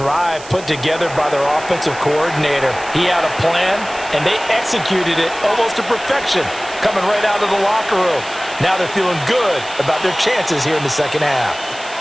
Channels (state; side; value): noise; right; hiss, 17 dB below the sound